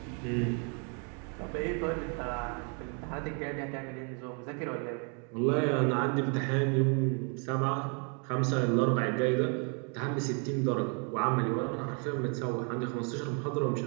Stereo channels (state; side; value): quieter; left; 38.3 dB